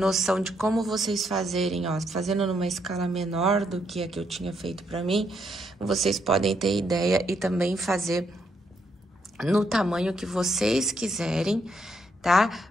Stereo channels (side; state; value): both; normal; correlation 0.76